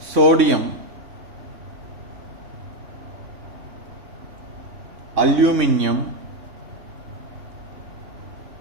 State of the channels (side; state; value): left; late; 3.6 ms